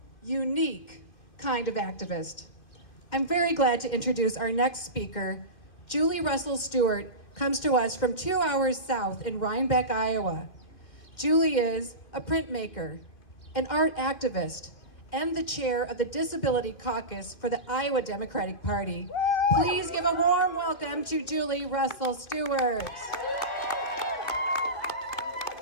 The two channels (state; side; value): late; right; 2.6 ms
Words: unique kind of activist. I'm very glad to introduce our next speaker. Julie Russell-Steuart comes to us from 2 hours south in Rhinebeck, Iowa. Julie is a printmaker, an art activist, and the chair of the Disability Caucus for the Iowa Democratic Party. Please give a warm welcome to Julie Russell-Steuart.